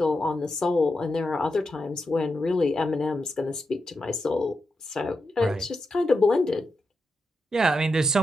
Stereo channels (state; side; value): normal; both; correlation 0.87